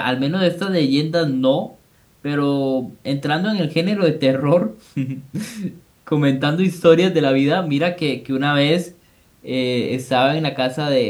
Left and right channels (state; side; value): identical; both; correlation 1.00